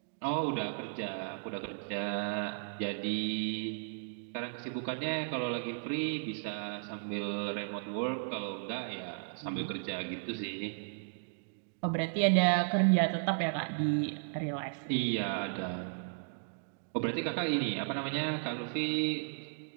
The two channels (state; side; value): silent; left; digital silence